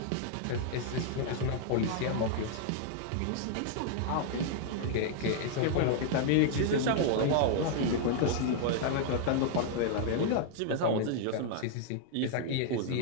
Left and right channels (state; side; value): different; both; correlation 0.00